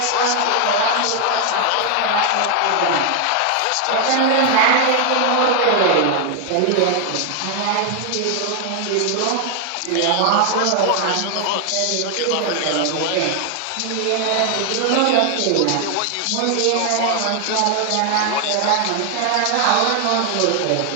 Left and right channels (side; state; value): both; different; correlation 0.00